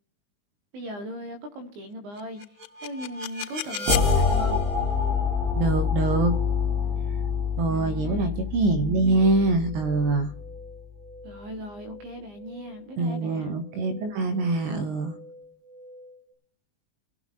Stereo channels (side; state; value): left; late; 20 ms